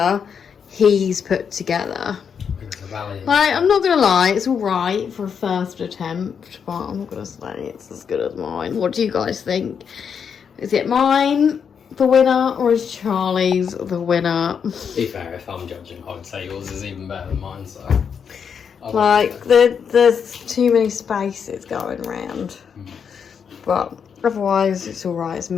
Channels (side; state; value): right; quieter; 7.0 dB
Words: he's put together. Like, I'm not gonna lie, it's alright for a first attempt, but I'm not gonna say it's as good as mine. What do you guys think? Is it mine the winner, or is Charlie's the winner? To be fair, if I'm judging, I would say yours is even better than mine, so... There's too many spaces going round. But otherwise, it's alright, it's